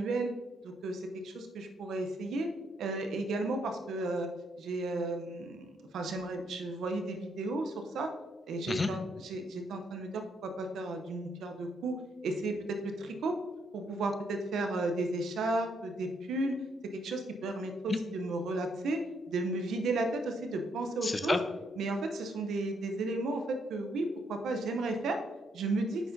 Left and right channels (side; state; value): both; normal; correlation 0.74